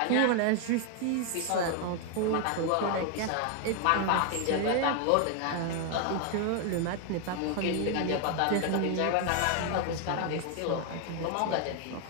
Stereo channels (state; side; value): different; both; correlation 0.00